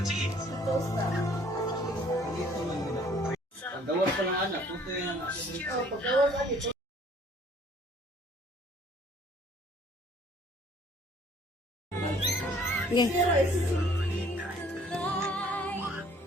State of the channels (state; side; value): normal; both; correlation 0.57